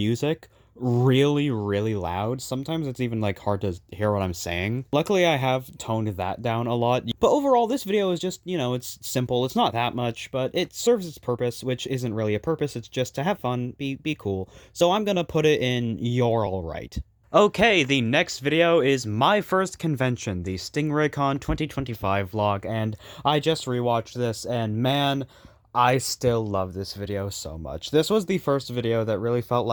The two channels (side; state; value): both; identical; correlation 1.00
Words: really, really loud. Sometimes it's even, hard to hear what I'm saying. Luckily, I have toned that down a lot. But overall, this video is just, it's simple. It's not that much, but it serves its purpose, which isn't really a purpose. It's just to have fun, be cool. So I'm gonna put it in You're Alright. Okay, the next video is my first convention, the StingrayCon 2025 vlog, and I just rewatched this, and man, I still love this video so much. This was the first video that really felt